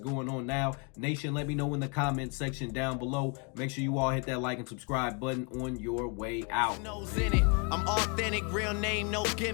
on now? Nation, let me know in the comment section down below. Make sure you all hit that like and subscribe button on your way out. In it. I'm authentic, real name, no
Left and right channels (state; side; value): quieter; right; 34.9 dB